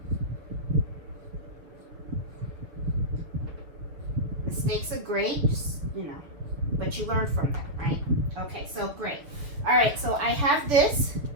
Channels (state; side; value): late; left; 7.2 ms